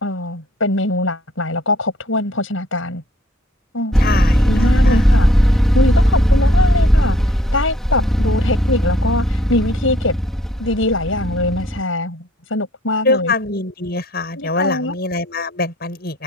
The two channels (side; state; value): both; normal; correlation 0.61